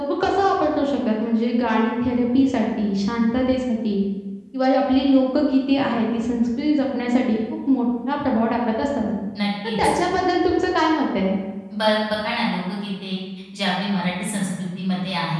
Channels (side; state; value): both; identical; correlation 1.00